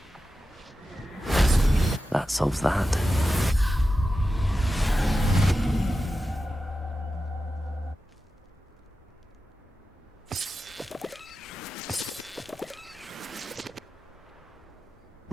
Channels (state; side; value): normal; both; correlation 0.92